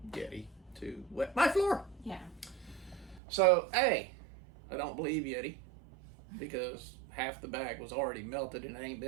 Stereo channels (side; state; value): left; drops out; at 3.2 s